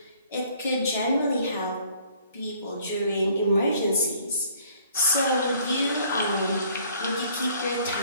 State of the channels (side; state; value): both; inverted; correlation -0.59